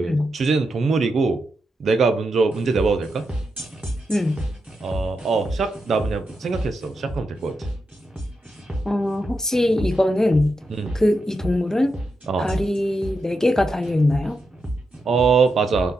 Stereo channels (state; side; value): normal; both; correlation 0.86